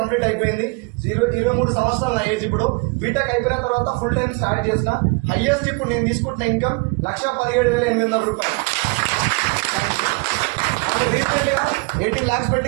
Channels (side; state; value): left; quieter; 31.0 dB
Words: అయిపోయింది, 23 సంవత్సరాలు నా ఏజ్. ఇప్పుడు బీటెక్ అయిపోయిన తర్వాత ఫుల్ టైం స్టార్ట్ చేసిన. హైయెస్ట్ ఇప్పుడు నేను తీసుకుంటున్న ఇన్కమ్ 1,17,800 రూపాయలు. రీసెంట్ గా 18 lakhs